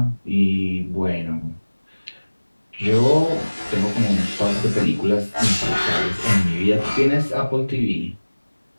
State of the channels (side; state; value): both; inverted; correlation -1.00